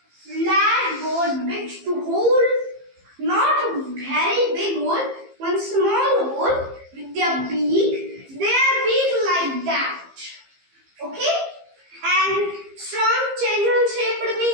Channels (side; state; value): left; late; 15 ms